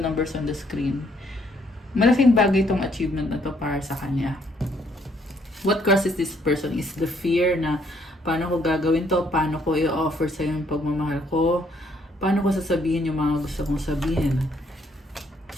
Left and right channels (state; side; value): normal; both; correlation 0.68